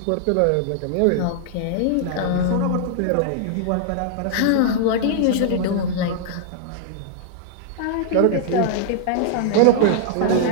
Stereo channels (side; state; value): both; different; correlation -0.01